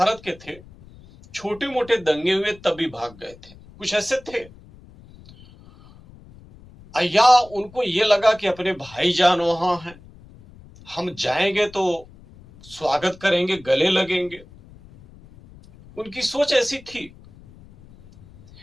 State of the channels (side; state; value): left; noise; rumble, 22 dB below the sound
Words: के थे, छोटे मोटे दंगे हुए तभी भाग गए थे, कुछ ऐसे थे। या उनको ये लगा कि अपने भाईजान वहां हैं, हम जाएंगे तो स्वागत करेंगे, गले लगेंगे। उनकी सोच ऐसी थी।